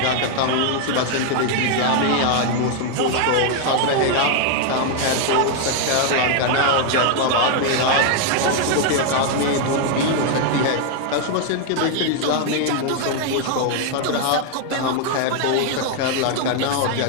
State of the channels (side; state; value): both; different; correlation 0.00